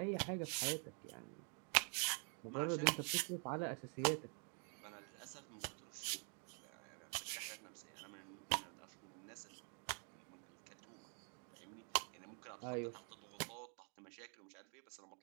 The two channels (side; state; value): left; quieter; 39.6 dB